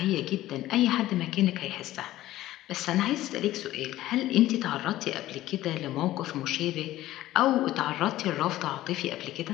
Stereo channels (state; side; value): quieter; right; 15.2 dB